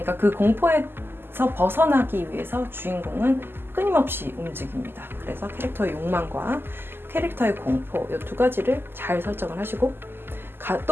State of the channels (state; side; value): late; left; 0.10 ms